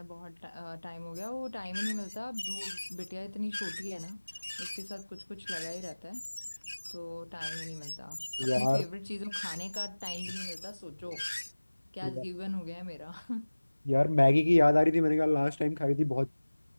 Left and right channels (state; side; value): inverted; both; correlation -1.00